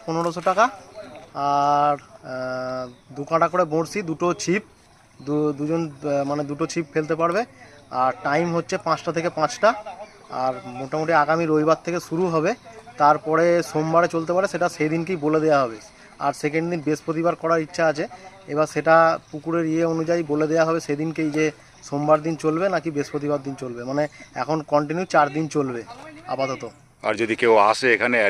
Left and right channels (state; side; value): identical; both; correlation 1.00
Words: 1500 টাকা। আর দু কাঁটা করে বড়শি, দুটো ছিপ, দুজন মানে দুটো ছিপ ফেলতে পারবে। আর টাইম হচ্ছে 5টা থেকে 5টা। আর মোটামুটি আগামী রবিবার থেকে শুরু হবে, তারপরে সোমবারে চলতে পারে, সেটা সেই দিনকেই বলে দেওয়া হবে। আর সেকেন্ড দিন বৃহস্পতিবার করার ইচ্ছা আছে, এবার সেটা পুকুরের অনুযায়ী বলে দেওয়া হবে সেদিনকেই, যে সোমবার দিন চলবে নাকি বৃহস্পতিবার দিন চলবে। মানে এখন কন্টিনিউ 4 দিন চলবে আপাতত। আর যদি কেউ আসে এখানে